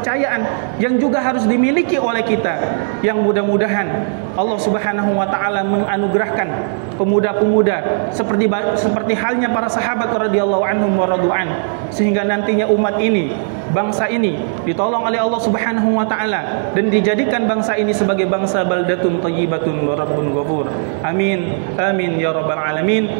yang juga harus dimiliki oleh kita, yang mudah-mudahan Allah Subhanahu wa taala menganugerahkan pemuda-pemuda seperti halnya para sahabat radhiyallahu anhum wa radu'an, sehingga nantinya umat ini, bangsa ini ditolong oleh Allah Subhanahu wa taala dan dijadikan bangsa ini sebagai bangsa baldatun thayyibatun wa rabbun ghafur. Amin amin ya rabbal alamin.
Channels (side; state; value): left; silent; digital silence